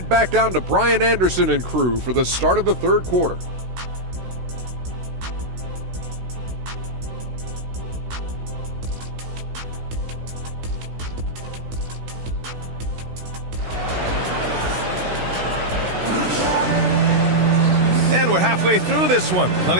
back down to Brian Anderson and crew for the start of the third quarter. And we're halfway through this one.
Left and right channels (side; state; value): left; late; 16 ms